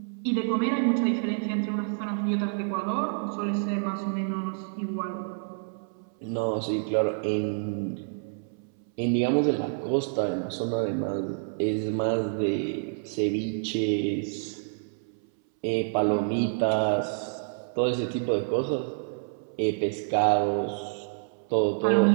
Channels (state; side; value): silent; left; 59 dB below the other